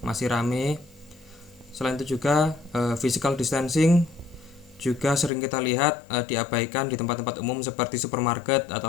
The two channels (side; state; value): right; drops out; at 5.3 s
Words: masih rame. Selain itu juga physical distancing juga sering kita lihat diabaikan di tempat-tempat umum seperti supermarket